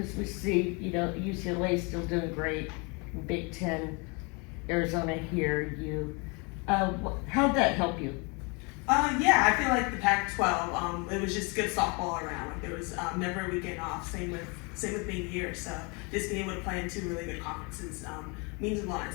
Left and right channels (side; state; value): right; quieter; 30.9 dB